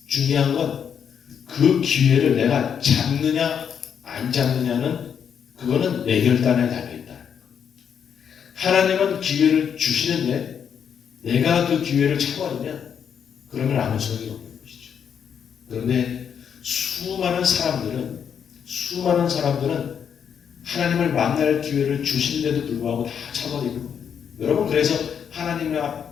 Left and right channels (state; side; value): quieter; right; 7.8 dB